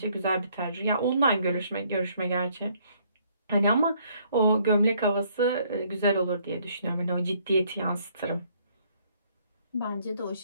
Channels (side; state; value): both; inverted; correlation -0.66